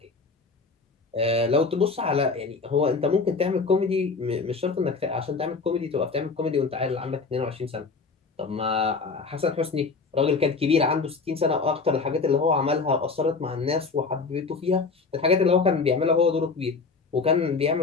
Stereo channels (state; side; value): quieter; right; 4.5 dB